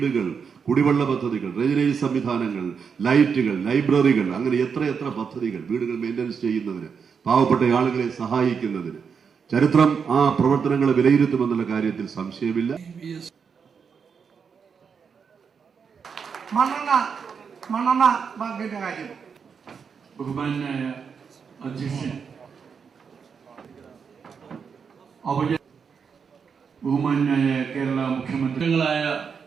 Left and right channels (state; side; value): quieter; left; 6.3 dB